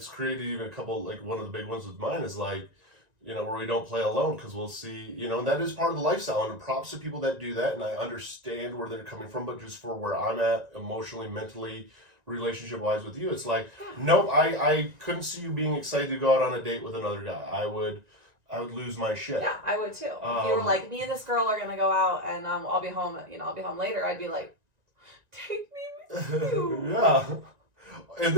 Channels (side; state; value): left; late; 1.9 ms